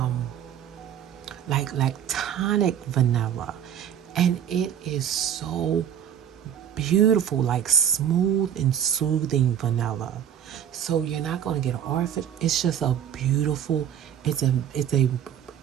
like tonic vanilla, and it is so beautiful, like smooth and soothing vanilla. So you're not going to get artificial. It's just a beautiful. It's a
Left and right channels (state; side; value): quieter; left; 9.3 dB